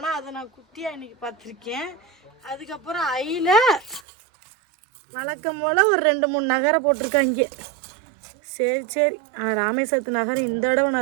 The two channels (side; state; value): left; drops out; at 4.0 s